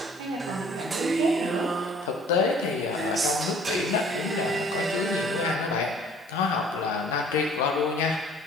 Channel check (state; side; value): normal; both; correlation 0.53